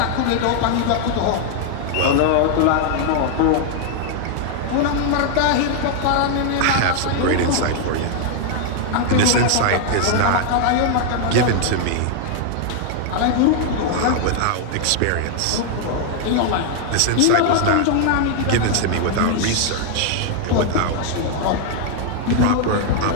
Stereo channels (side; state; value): both; different; correlation 0.00